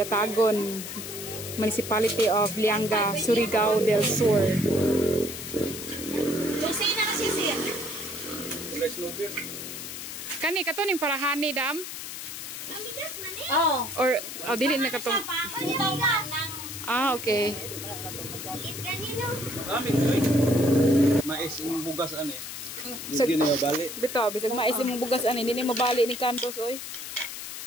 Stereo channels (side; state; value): left; noise; hiss, 8 dB below the sound